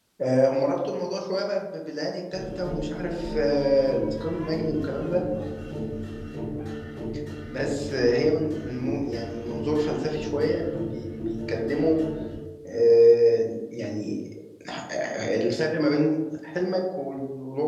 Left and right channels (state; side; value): identical; both; correlation 1.00